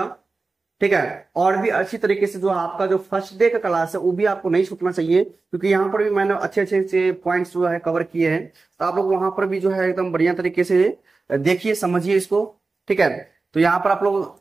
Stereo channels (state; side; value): quieter; left; 3.8 dB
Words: ठीक है, और भी अच्छी तरीके से जो आपका जो फर्स्ट डे का क्लास है वो भी आपको नहीं छूटना चाहिए, क्योंकि यहाँ पर भी मैंने अच्छे अच्छे से पॉइंट्स जो है कवर किए हैं। तो आप लोग वहां पर भी जो है एकदम बढ़िया तरीके से देखिए, समझिए इसको। ठीक है, तो यहाँ पर आप